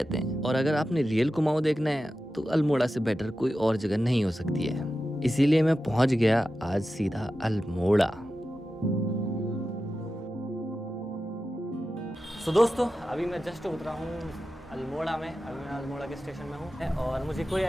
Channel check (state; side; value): normal; both; correlation 0.92